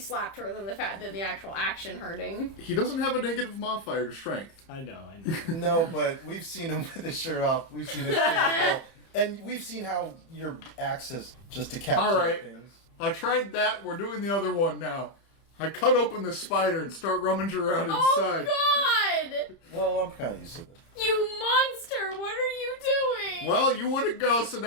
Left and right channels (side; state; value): right; late; 30 ms